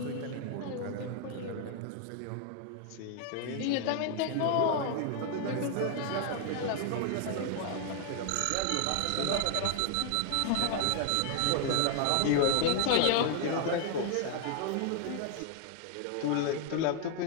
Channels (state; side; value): different; both; correlation 0.00